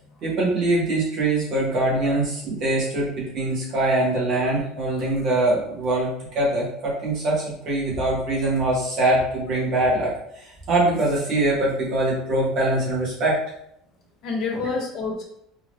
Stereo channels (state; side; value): normal; both; correlation 0.31